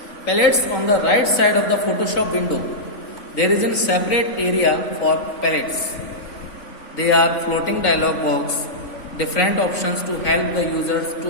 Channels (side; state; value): right; late; 3.5 ms